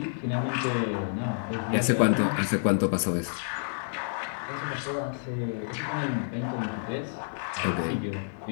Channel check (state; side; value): silent; right; 59 dB below the other